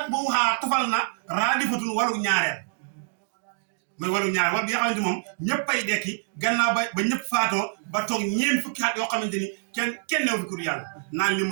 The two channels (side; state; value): left; silent; digital silence